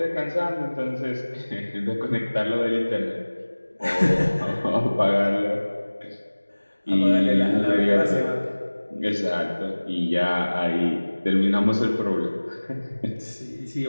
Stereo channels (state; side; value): inverted; both; correlation -1.00